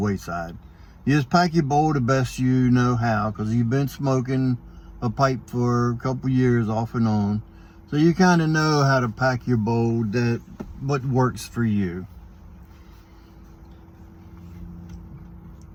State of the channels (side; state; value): both; identical; correlation 1.00